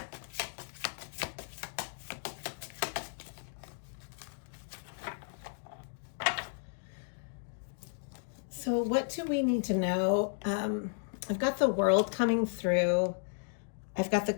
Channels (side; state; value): right; silent; digital silence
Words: So what do we need to know I've got the World coming through. I've got the